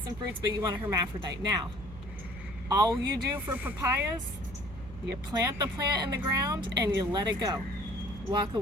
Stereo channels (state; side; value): noise; right; hum, 14 dB below the sound